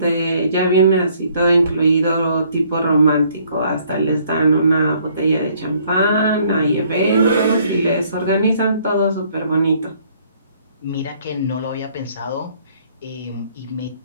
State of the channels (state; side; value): inverted; both; correlation -0.63